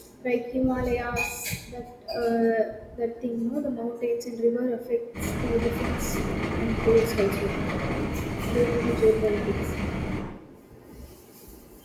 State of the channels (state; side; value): identical; both; correlation 1.00